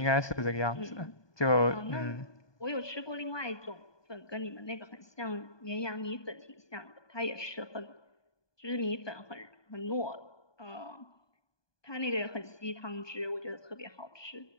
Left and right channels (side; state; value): right; late; 1.2 ms